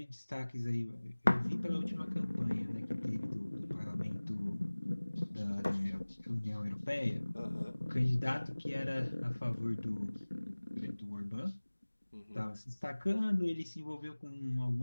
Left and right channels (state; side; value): inverted; both; correlation -1.00